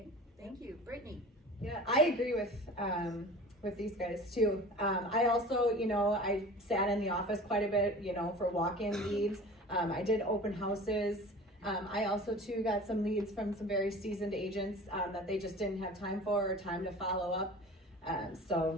thank you. Brittney? Yeah, I agree with these guys too. I also, I sat in the office quite a bit, for walk-in leads. I did open houses. I also too got some leads from some very seasoned agents that they just didn't have time for or time to follow up.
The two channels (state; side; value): normal; both; correlation 0.40